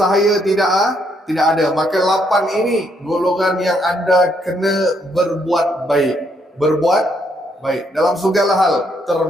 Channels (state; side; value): normal; both; correlation 0.73